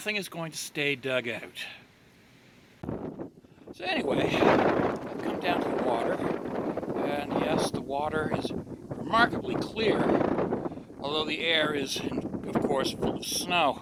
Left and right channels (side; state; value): both; identical; correlation 1.00